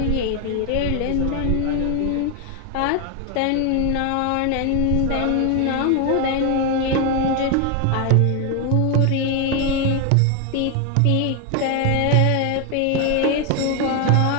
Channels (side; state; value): both; different; correlation 0.01